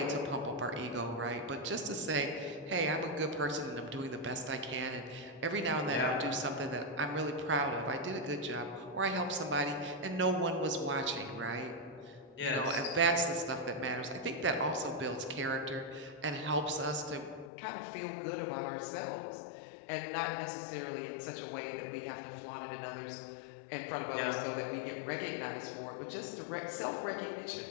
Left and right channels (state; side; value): drops out; right; at 17.5 s